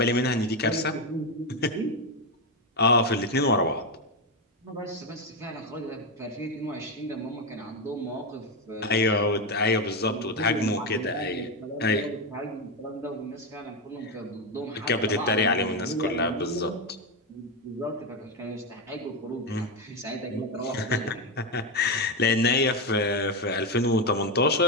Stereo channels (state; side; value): normal; both; correlation 0.09